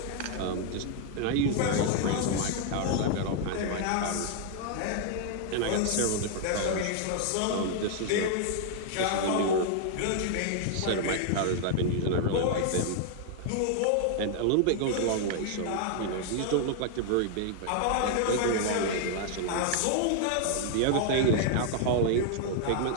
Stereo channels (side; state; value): both; different; correlation 0.00